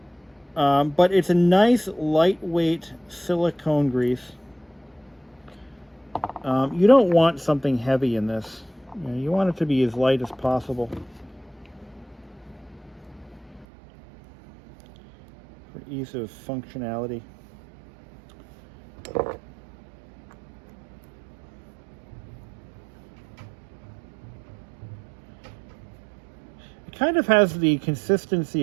But it's a nice lightweight silicone grease. You don't want something heavy in this. You want it to be as light as possible for ease of functionality. It kind of has the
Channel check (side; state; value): left; drops out; at 13.7 s